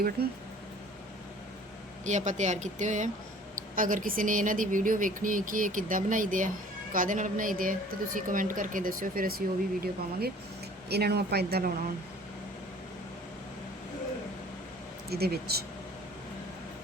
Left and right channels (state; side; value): normal; both; correlation 0.50